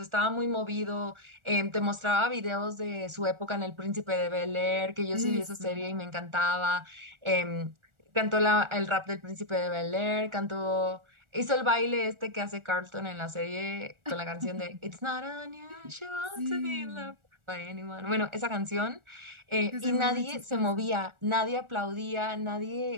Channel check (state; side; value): late; left; 1.4 ms